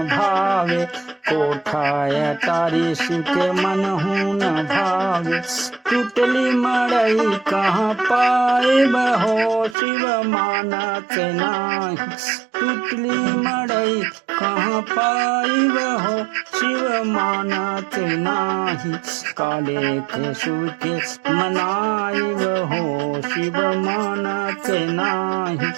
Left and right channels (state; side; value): drops out; left; at 9.8 s